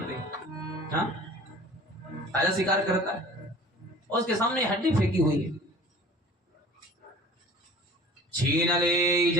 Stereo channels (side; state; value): both; normal; correlation 0.45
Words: हैं। हाँ, ताजा शिकार करता है और उसके सामने हड्डी फेंकी हुई है। छीन ले